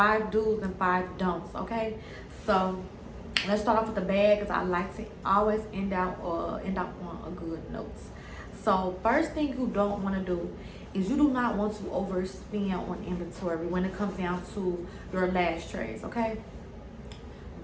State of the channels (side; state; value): both; identical; correlation 1.00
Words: do's and 5 don'ts. Okay, so let's start off with the bag, because I like to always end out on a good note. So first thing you don't want to do is you do not want to overspend on inventory when it comes down to your lash trays. Okay,